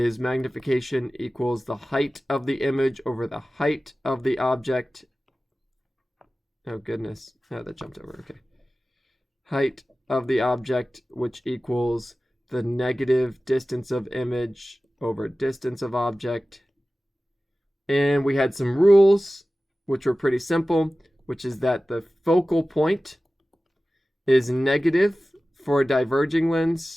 magnification equals the height of the image over the height of the object. Oh, goodness. Oh, that jumped over. Okay. Height of the object, which equals the negative distance of image over distance of object. And we had some rules, which were pretty simple, which is that the focal point is negative for a diverging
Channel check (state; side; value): normal; both; correlation 0.96